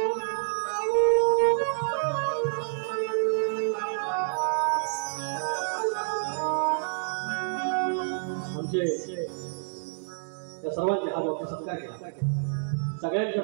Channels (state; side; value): silent; left; digital silence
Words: आमचे त्या सर्वांचे हात वरती सत्कार केला, सगळ्यांच्या